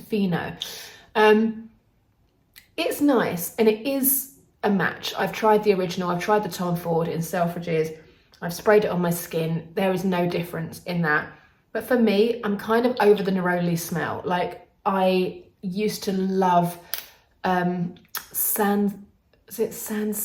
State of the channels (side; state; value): both; identical; correlation 1.00